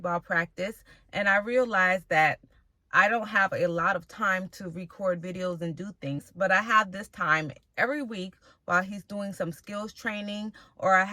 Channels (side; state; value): both; identical; correlation 1.00